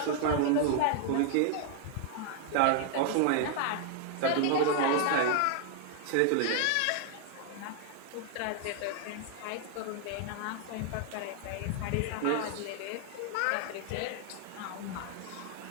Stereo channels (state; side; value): different; both; correlation 0.00